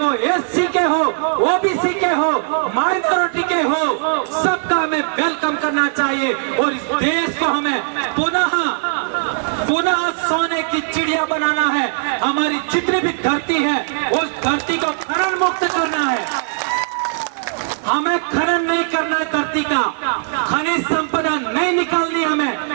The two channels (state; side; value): silent; left; digital silence